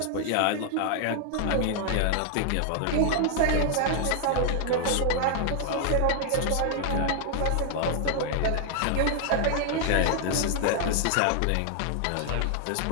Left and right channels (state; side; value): different; both; correlation 0.00